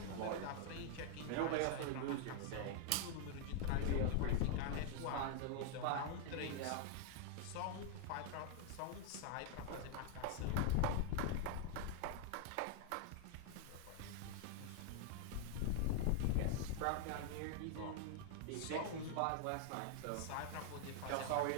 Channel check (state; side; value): different; both; correlation 0.00